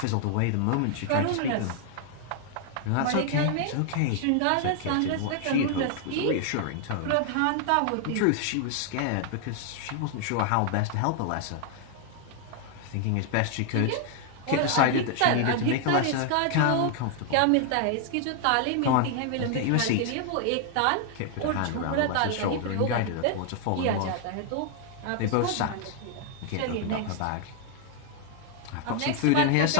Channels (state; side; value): different; both; correlation 0.00